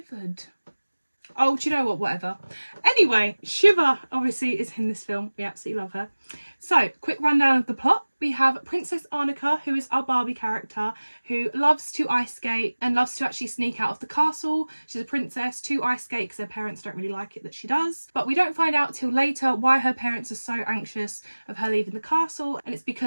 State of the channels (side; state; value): both; inverted; correlation -1.00